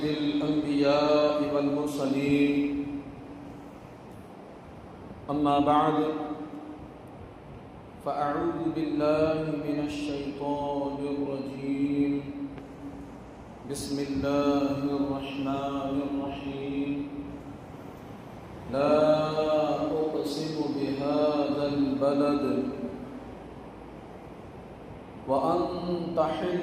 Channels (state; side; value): identical; both; correlation 1.00